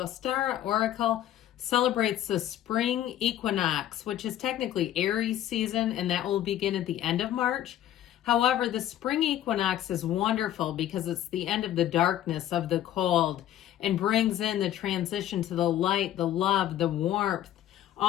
Oracle celebrates the spring equinox, which is technically Aries season, and that will begin at the end of March. However, the spring equinox is wonderful because it's the end of the darkness, of the cold, and brings in the transition to the light, the love, the warmth,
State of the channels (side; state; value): right; quieter; 12.2 dB